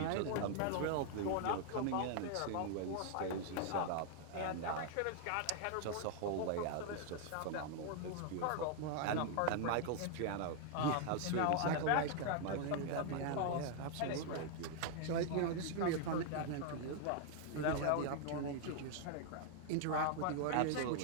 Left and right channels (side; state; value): both; different; correlation 0.00